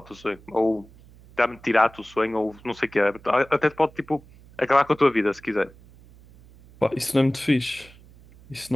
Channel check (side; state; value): right; noise; hum, 24 dB below the sound